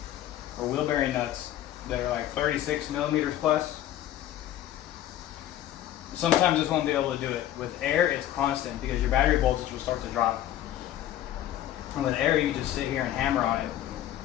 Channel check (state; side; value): quieter; right; 12.5 dB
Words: or wheel bearing nuts that are like 36 millimeters plus, sometimes this won't be able to do it. With air, it's constant because your battery voltage will start to drop. And with air, you can just sit here and hammer on it,